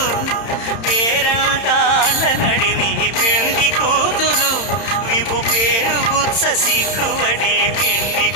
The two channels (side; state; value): right; late; 31 ms